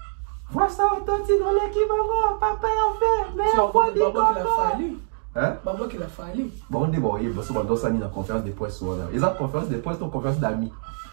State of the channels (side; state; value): left; silent; digital silence